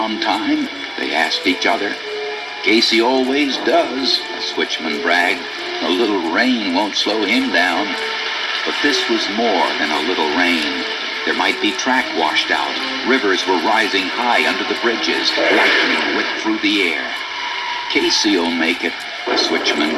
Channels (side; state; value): both; identical; correlation 1.00